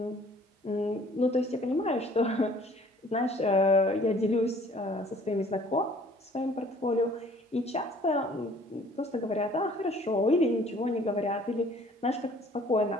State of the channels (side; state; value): both; normal; correlation 0.55